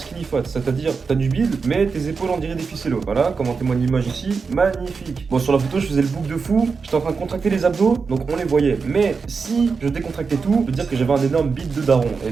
fat, c'est-à-dire t'as du bide, mais tes épaules on dirait des ficellos. Voilà, comme en témoigne l'image ici, magnifique. Bon, sur la photo je faisais le bouc de fou, j'étais en train de contracter les abdos, donc on les voyait. Mais si je décontractais tout, je peux dire que j'avais un énorme bide de daron. Et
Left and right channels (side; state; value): left; quieter; 5.0 dB